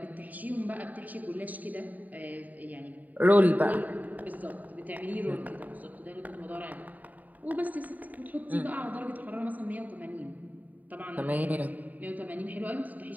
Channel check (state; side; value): late; left; 0.078 ms